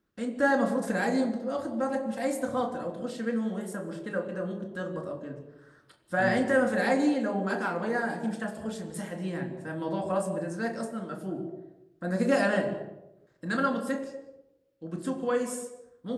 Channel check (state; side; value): identical; both; correlation 1.00